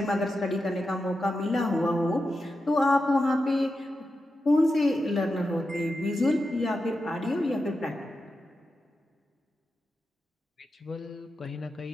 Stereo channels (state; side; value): normal; both; correlation 0.89